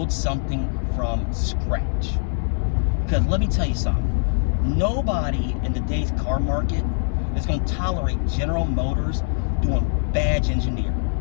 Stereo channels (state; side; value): silent; right; digital silence